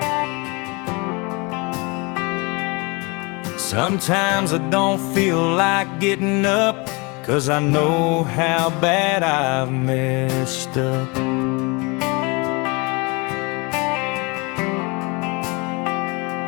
Sometimes I don't feel like getting up, 'cause I know how bad I've messed up.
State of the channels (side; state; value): right; quieter; 28.4 dB